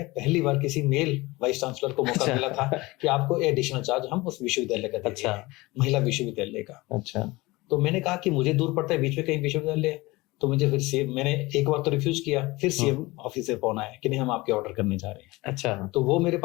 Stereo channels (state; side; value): quieter; right; 21.6 dB